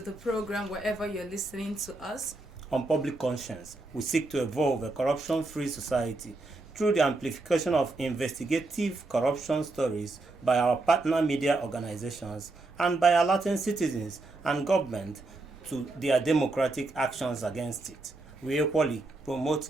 the program wherever you're listening to us. On Public Conscience, we seek to evolve a corruption-free society through the amplification of investigative corruption stories by our partner media organizations and by alerting citizens and government to their democratic actions against it. We equally promote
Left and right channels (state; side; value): quieter; left; 3.1 dB